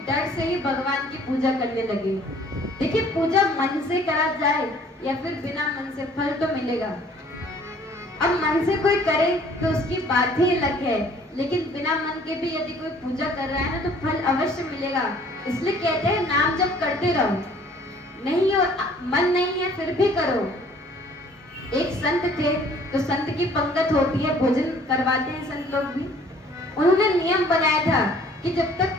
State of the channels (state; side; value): normal; both; correlation 0.56